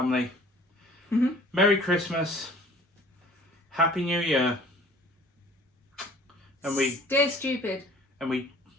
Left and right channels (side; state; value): both; normal; correlation 0.50